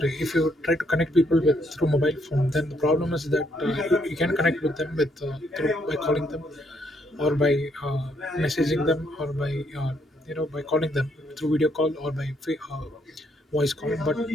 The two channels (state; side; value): normal; both; correlation 0.72